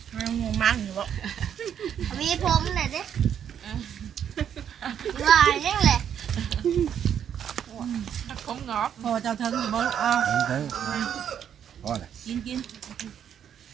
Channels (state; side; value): quieter; left; 9.0 dB